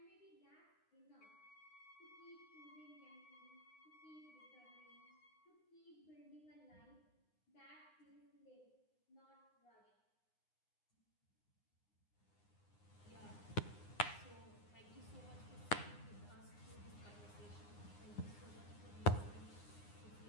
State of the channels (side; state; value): right; late; 9.7 ms